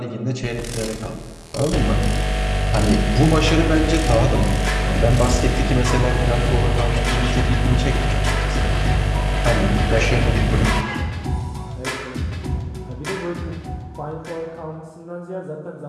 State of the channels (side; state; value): both; identical; correlation 1.00